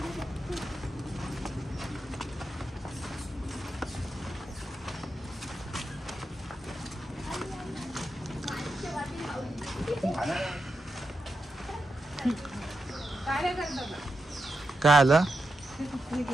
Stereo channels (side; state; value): both; normal; correlation 0.87